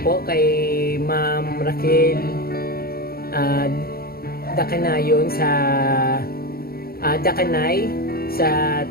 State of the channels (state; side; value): late; right; 0.44 ms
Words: po kay Ma'am Raquel Dakanayon sa Dakanay sa